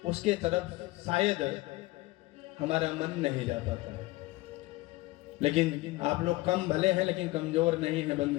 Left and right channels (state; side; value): quieter; right; 19.8 dB